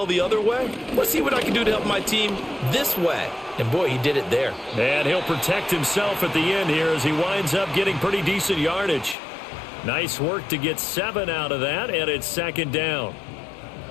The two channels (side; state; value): right; drops out; at 9.2 s